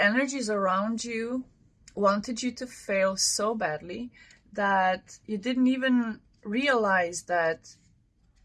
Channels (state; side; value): identical; both; correlation 1.00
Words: around you wanted you to fail so badly that you didn't even realize that